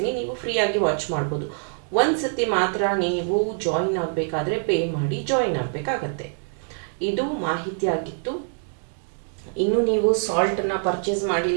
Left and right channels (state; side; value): silent; left; 62 dB below the other